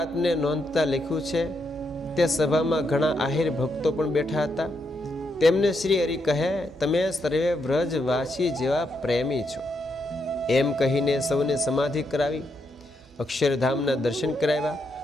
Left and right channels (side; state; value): both; normal; correlation 0.80